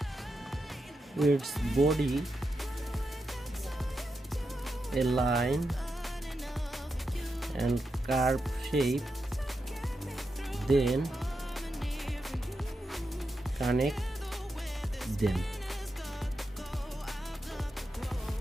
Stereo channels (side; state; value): both; normal; correlation 0.87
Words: its body, a line and curve shape, then connect them.